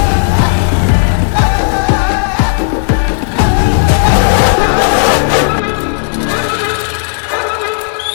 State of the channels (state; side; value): silent; right; digital silence